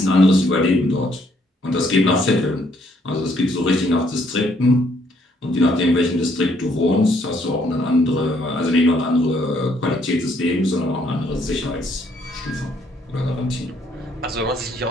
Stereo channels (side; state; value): both; normal; correlation 0.68